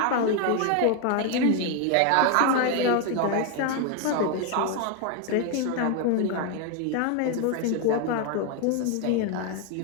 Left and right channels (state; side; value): different; both; correlation 0.01